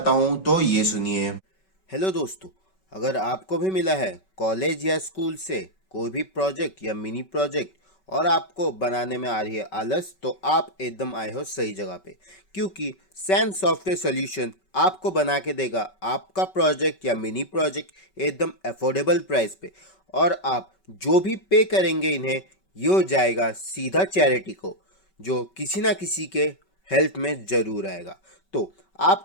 हूँ, तो ये सुनिए। हेलो दोस्तों, अगर आपको भी मिला है कॉलेज या स्कूल से कोई भी प्रोजेक्ट या मिनी प्रोजेक्ट और आपको बनाने में आ रही है आलस, तो आप एकदम आए हो सही जगह पे, क्योंकि सैन सॉफ्टवेयर सॉल्यूशन आपको बना के देगा आपका प्रोजेक्ट या मिनी प्रोजेक्ट एकदम अफोर्डेबल प्राइस पे। और आप जो भी पे करेंगे इन्हें, ये हो जाएगा सीधा चैरिटी को, जो किसी ना किसी के हेल्प में ज़रूर आएगा। तो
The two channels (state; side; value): late; right; 5.3 ms